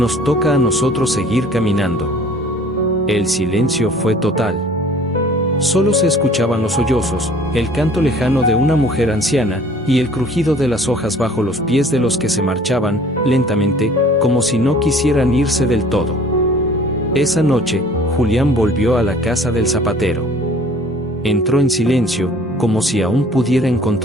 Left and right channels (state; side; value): normal; both; correlation 0.51